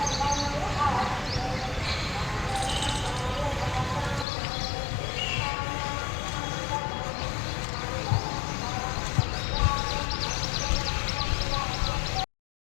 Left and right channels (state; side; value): drops out; right; at 4.2 s